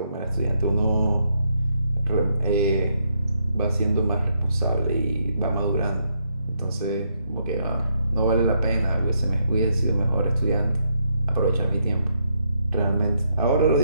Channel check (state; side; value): inverted; both; correlation -0.76